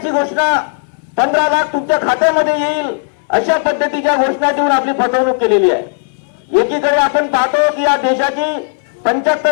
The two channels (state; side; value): silent; right; digital silence